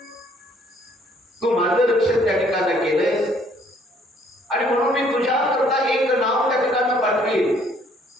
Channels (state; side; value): normal; both; correlation 0.62